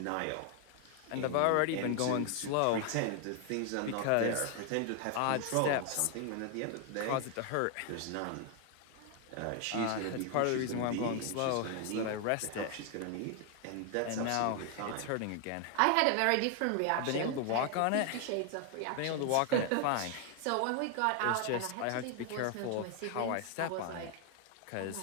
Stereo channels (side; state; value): both; different; correlation 0.00